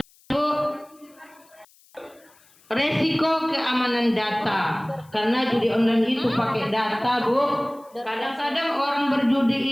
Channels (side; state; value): left; noise; hiss, 30 dB below the sound